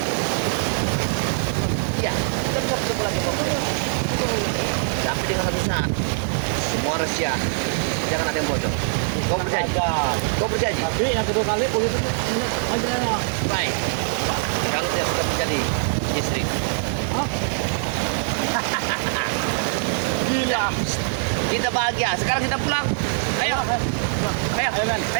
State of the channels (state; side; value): silent; left; 64 dB below the other